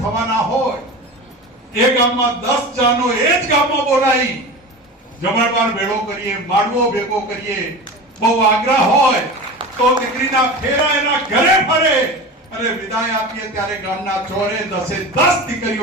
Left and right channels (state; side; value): normal; both; correlation 0.31